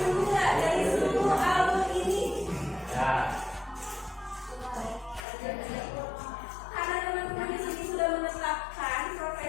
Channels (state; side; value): drops out; right; at 5.2 s